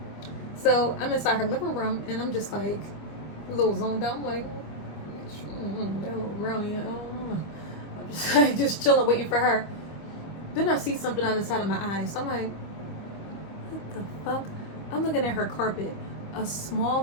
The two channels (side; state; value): right; late; 25 ms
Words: So I'm inside her living room and I'm just like a little zoned out. I'm like, that little brownie. I'm just like, just chilling, waiting for her. Then I see something on the side of my eyes. I'm like, what the fuck? I'm looking at her carpet. A